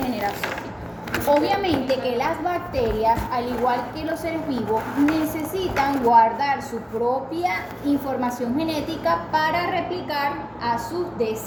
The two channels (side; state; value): both; identical; correlation 1.00